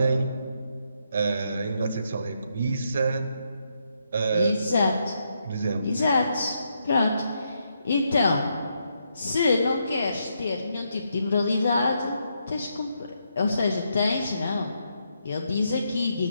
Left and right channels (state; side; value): inverted; both; correlation -0.79